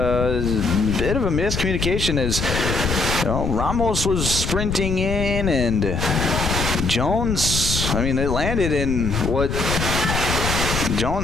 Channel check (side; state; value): left; noise; rumble, 3 dB below the sound